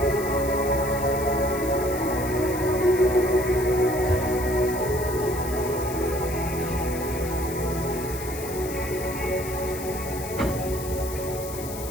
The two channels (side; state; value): left; noise; hiss, 11 dB below the sound